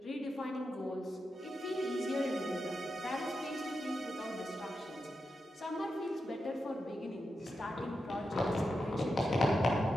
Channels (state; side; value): normal; both; correlation 0.88